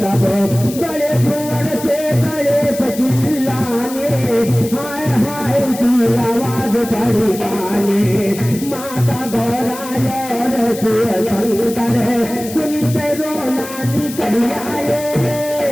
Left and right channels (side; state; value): left; noise; hiss, 13 dB below the sound